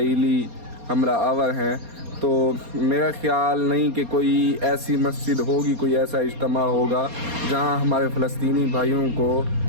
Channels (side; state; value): left; late; 4.2 ms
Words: حملہ آور ہیں۔ تو میرا خیال نہیں کہ کوئی ایسی مسجد ہوگی، کوئی ایسا اجتماع ہوگا جہاں ہمارے فلسطینی بھائیوں کو